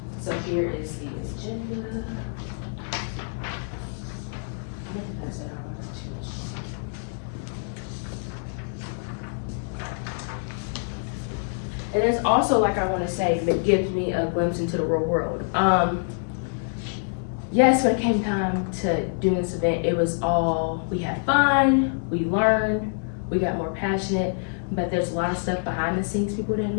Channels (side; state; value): right; silent; digital silence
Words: So here is the agenda. And it's also, like I want to say, that gives me a glimpse into the real world. Yes, when it came time to doing this event, it was all, we had fun, we learned, we got more passionate, but there's a lot of stuff behind the scenes people didn't